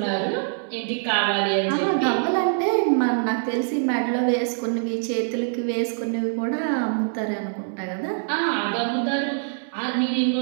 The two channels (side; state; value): left; silent; 63 dB below the other